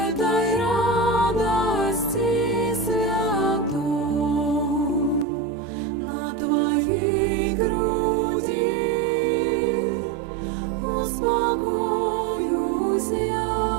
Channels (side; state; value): left; drops out; at 5.2 s